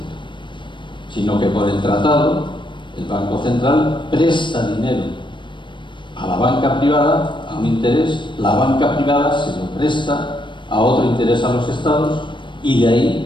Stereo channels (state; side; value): late; right; 0.23 ms